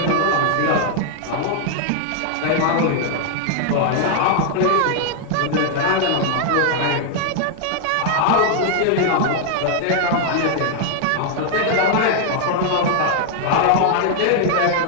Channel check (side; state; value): both; different; correlation 0.00